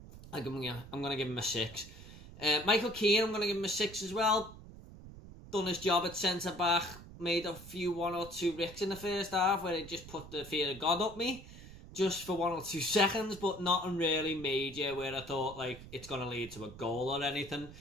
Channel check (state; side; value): noise; right; rumble, 16 dB below the sound